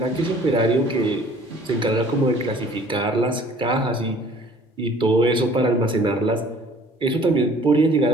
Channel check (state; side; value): normal; both; correlation 0.53